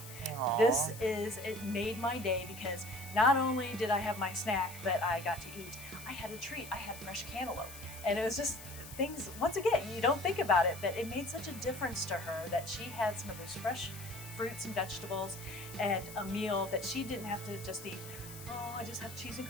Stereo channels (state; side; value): noise; left; hiss, 14 dB below the sound